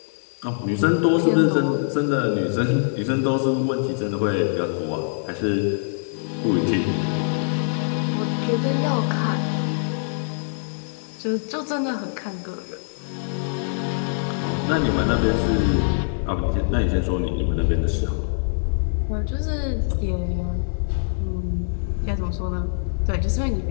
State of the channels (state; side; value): silent; right; 63 dB below the other